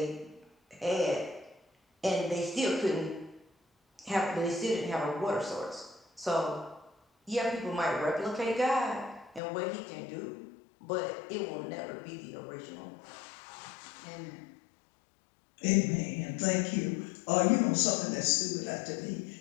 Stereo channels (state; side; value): drops out; right; at 9.4 s